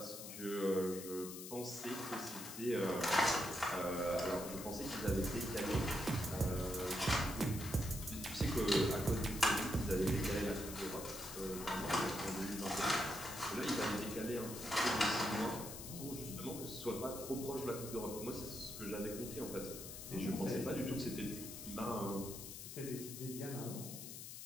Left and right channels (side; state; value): left; noise; hiss, 10 dB below the sound